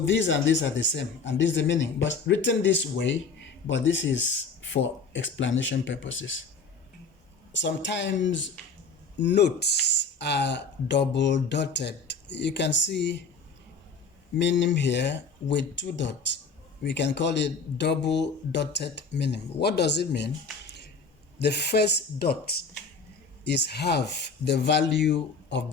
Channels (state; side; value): quieter; right; 4.5 dB